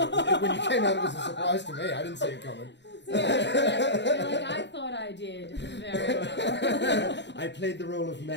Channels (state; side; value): late; right; 0.51 ms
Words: it was a surprise to me. I didn't see it coming. You're like, I thought I did very well. I played the role of